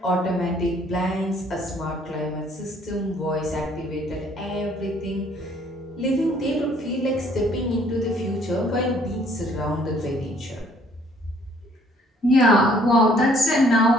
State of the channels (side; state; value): both; normal; correlation 0.61